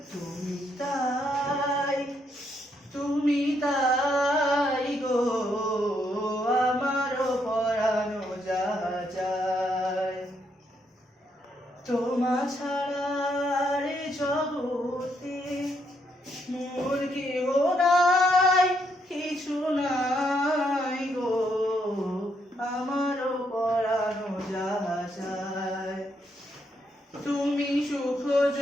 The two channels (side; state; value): both; normal; correlation 0.76